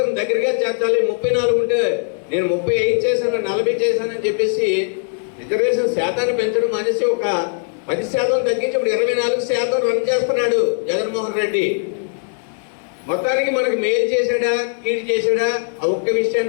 దగ్గరగా చేర్చాలి. 34 ఉంటే నేను 35 చేశాను, 40 చేశానని చెప్పేసి రిజర్వేషన్ శాతాన్ని పెంచడం అనేసి ఒక 10% తగ్గించి ఇప్పుడు 24% రన్ చేస్తున్నాడు జగన్మోహన్ రెడ్డి. మొత్తానికి మనకు మేలు చేశాడా, కీడు చేశాడా, ఆ ఒక్క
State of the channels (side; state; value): right; silent; digital silence